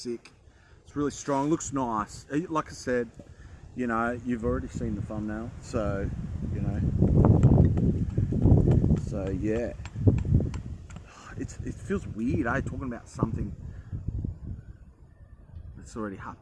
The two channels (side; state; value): both; identical; correlation 1.00